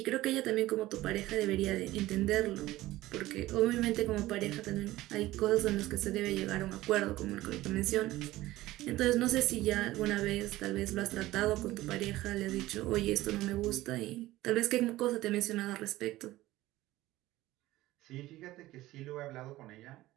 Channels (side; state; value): left; quieter; 16.8 dB